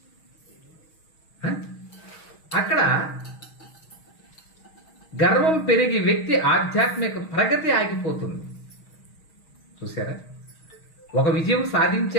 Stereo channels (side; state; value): right; late; 6.3 ms